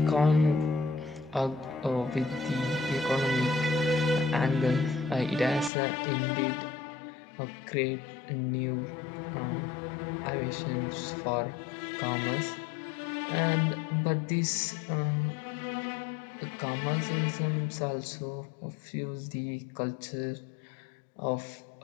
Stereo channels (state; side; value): drops out; right; at 5.7 s